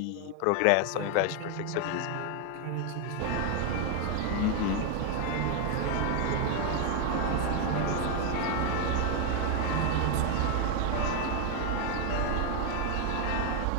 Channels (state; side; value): different; both; correlation 0.01